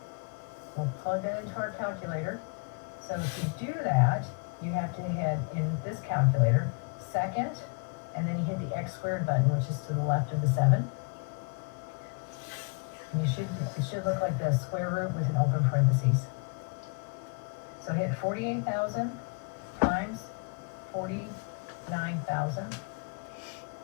We'll plug that into our calculator. So to do that, you have to hit in this calculator, second, and then you hit the x squared button, which is to the left of the 7. And it should look like the square root with an open parentheses. So hit 48,000 times 49,000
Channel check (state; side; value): quieter; right; 35.7 dB